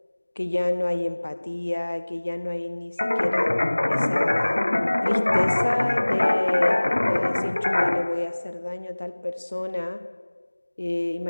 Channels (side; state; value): both; inverted; correlation -1.00